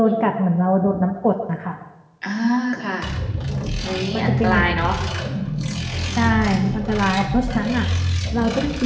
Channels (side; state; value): both; identical; correlation 1.00